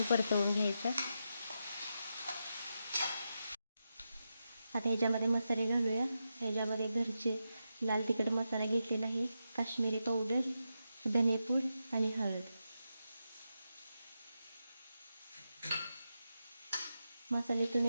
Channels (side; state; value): both; inverted; correlation -0.87